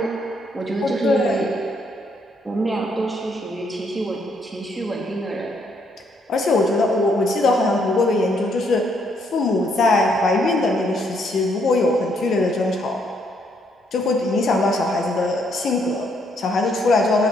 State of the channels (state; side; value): normal; both; correlation 0.72